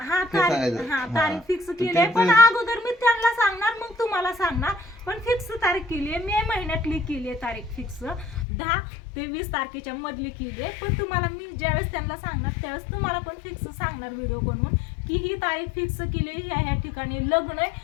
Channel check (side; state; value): right; drops out; at 8.5 s